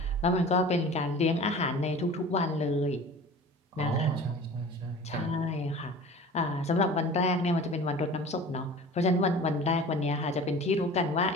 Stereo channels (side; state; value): both; normal; correlation 0.40